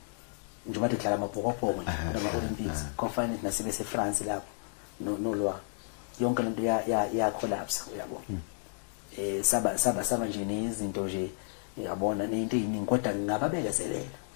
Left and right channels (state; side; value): silent; right; digital silence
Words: nje bathi dlala amabhokobhoko kufanele nasebese eFrance lapho no lwah yonke lento ya collapse yabo saba nje nezinto nje yabona nento eziningi kodwa ngingababekezelela